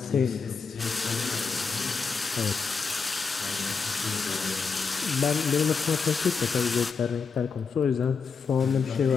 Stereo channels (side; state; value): right; quieter; 5.3 dB